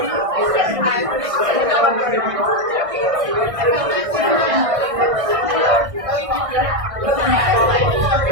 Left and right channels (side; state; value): left; late; 1.6 ms